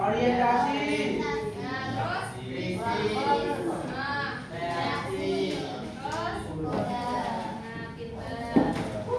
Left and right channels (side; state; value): both; identical; correlation 1.00